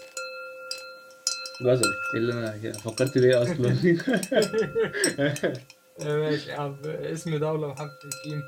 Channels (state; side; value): identical; both; correlation 1.00